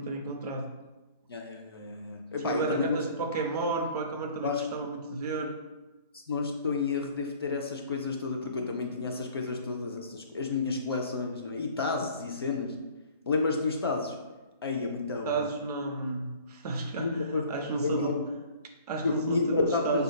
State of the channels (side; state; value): both; inverted; correlation -0.50